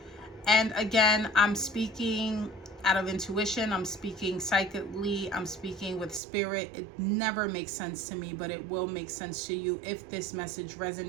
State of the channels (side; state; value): left; drops out; at 6.2 s